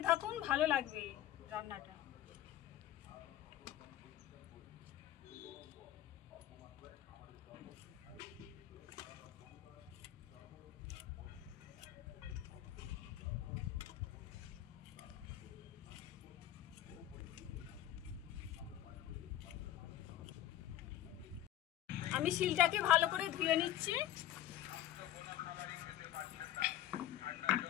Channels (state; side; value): quieter; right; 12.7 dB